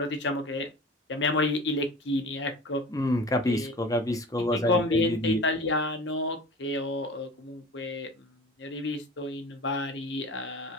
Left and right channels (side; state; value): both; normal; correlation 0.38